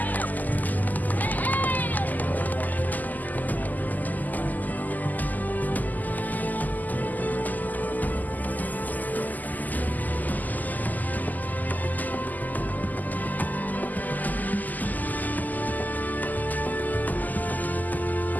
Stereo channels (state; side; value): late; right; 0.082 ms